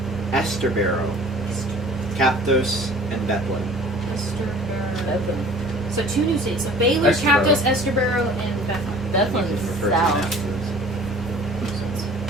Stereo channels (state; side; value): normal; both; correlation 0.48